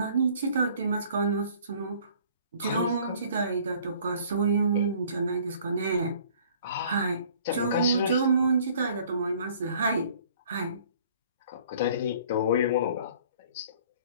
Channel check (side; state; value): both; inverted; correlation -0.54